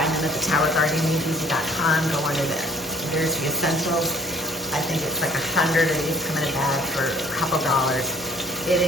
them at the towergardening.com. Go under the nursery essentials. I think it's like 100, or these come in a bag for a couple dollars. It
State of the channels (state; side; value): normal; both; correlation 0.56